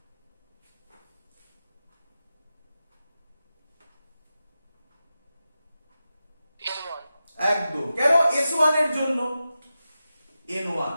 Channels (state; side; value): inverted; both; correlation -0.92